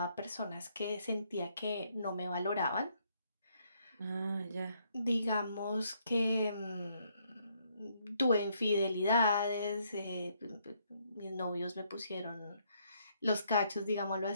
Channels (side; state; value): both; inverted; correlation -0.71